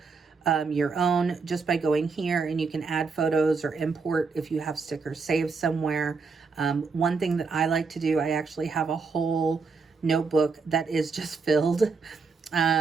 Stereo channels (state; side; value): quieter; left; 4.7 dB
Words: your own just by going here, and you can add photos or import if you have stickers saved somewhere. One thing that I like to do, I actually have a whole notebook that is just filled